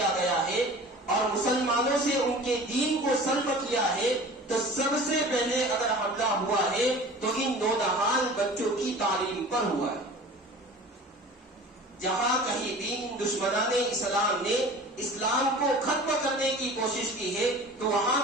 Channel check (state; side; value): normal; both; correlation 0.41